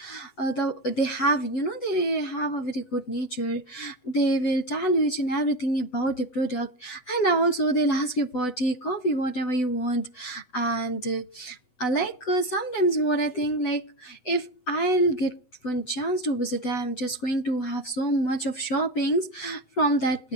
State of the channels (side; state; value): right; late; 8.0 ms